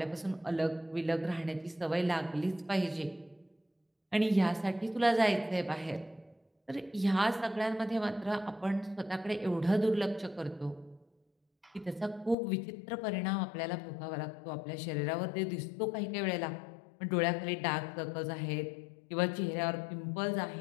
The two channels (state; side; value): drops out; right; at 12.4 s